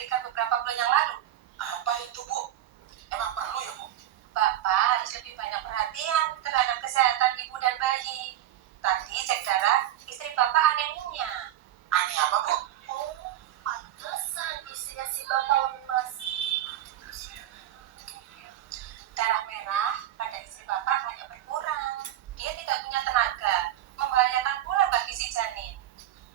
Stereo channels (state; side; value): quieter; left; 12.5 dB